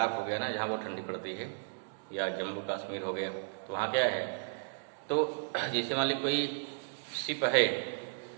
हो गया ना, जहाँ बहुत ठंडी पड़ती है, या जम्मू कश्मीर हो गया, तो वहाँ क्या है, तो जैसे मान ली कोई शिप है,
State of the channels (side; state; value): left; silent; digital silence